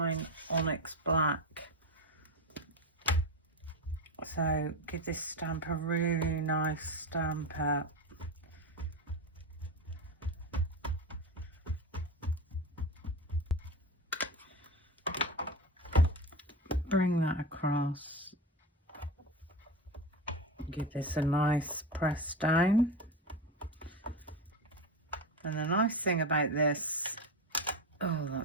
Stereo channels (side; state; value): both; normal; correlation 0.21